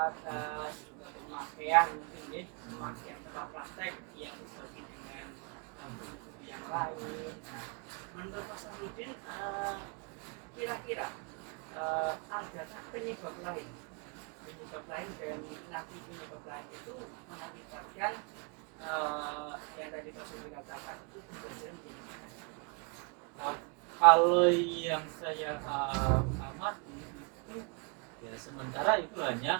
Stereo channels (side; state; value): left; quieter; 34.5 dB